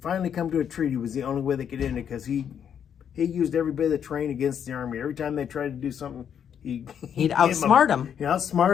finally come to a treaty was the only way they could end it because he used every bit of the terrain against the Army. Every time they tried to do something, He'd outsmart them. He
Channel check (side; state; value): right; quieter; 8.4 dB